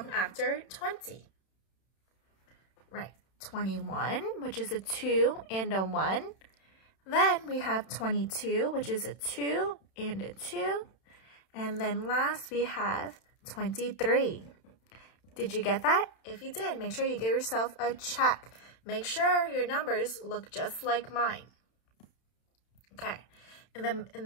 after 20? Right. 21, which is a 2 and a 1. Then we have 22, which is a 2 and a 2. And then last we have 23. Did you get that? If you did, make sure you give yourself a check. Make sure your numbers look just like mine. Okay, in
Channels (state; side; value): late; right; 31 ms